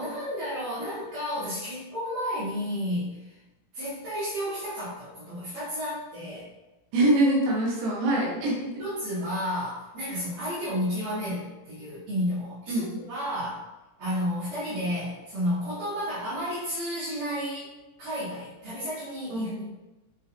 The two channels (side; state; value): left; late; 18 ms